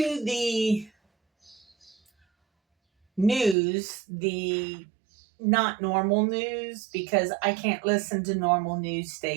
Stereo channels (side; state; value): left; drops out; at 3.6 s